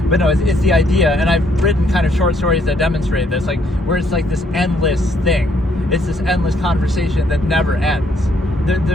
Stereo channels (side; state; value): both; normal; correlation 0.69